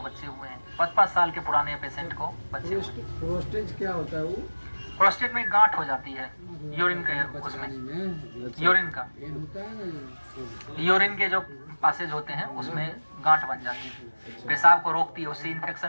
बच्चे हुए हैं। 5-5 साल के पुराने पेशेंट को बच्चे हुए। प्रोस्टेट क्या होता है वो? प्रोस्टेट में गांठ हो जाती है यूरिन के, उसमें यूरिन का, यूरिन के जो पासेज होते हैं उसमें गांठ बन जाती है, पेशाब को रोकती है, उससे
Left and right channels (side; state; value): both; inverted; correlation -1.00